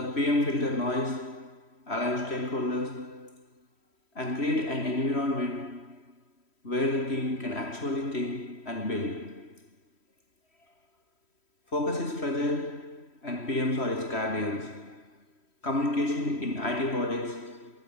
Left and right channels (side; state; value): right; late; 3.1 ms